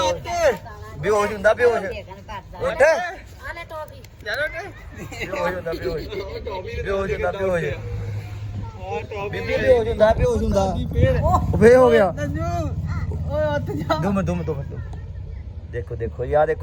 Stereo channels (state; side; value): identical; both; correlation 1.00